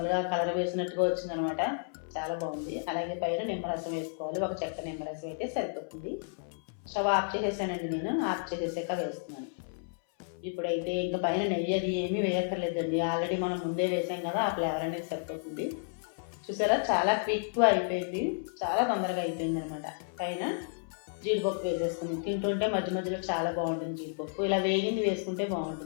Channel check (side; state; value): right; silent; 57 dB below the other